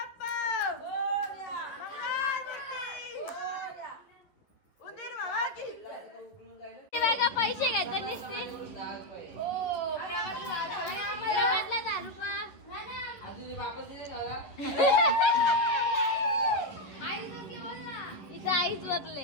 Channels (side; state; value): right; late; 11 ms